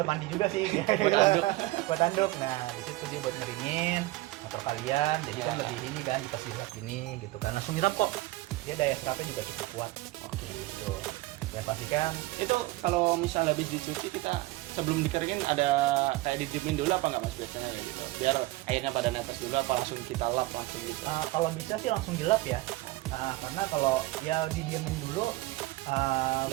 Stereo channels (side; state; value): left; quieter; 19.5 dB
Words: mandi juga sih. Buat anduk. Buat anduk. Nah, di situ dia buat ngeringin motor kalian. Jadi kan Ya. lebih ini kan dikasih serap gini gitu kan. Langsung nyerap kok. Dia daya serapnya juga cukup kuat. Oke, gitu. Ya pastikan Itu kalau misal habis dicuci kita sebelum dikeringin ada kayak didiemin dulu apa nggak mas biasanya kayak gitu? Biar airnya pada netes dulu apa langsung kita lap langsung gitu? kalau bisa sih langsung dilap ya. Karena kalau ya didiemin dulu